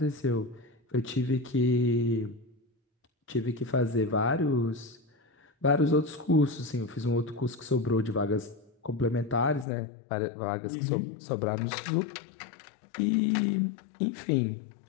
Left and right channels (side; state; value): right; drops out; at 9.7 s